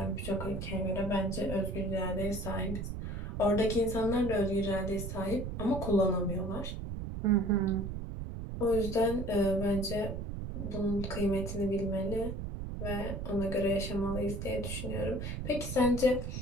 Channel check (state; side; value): noise; right; rumble, 5 dB below the sound